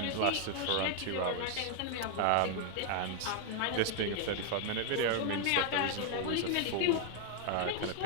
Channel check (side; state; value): both; different; correlation 0.00